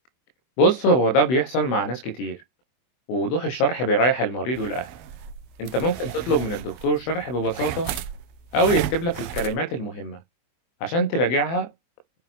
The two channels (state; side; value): late; right; 23 ms